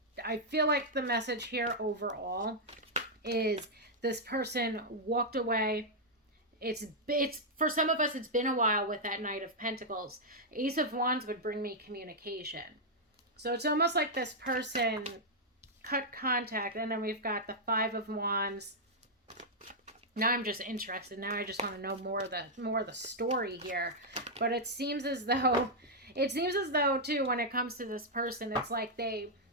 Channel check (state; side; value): normal; both; correlation -0.04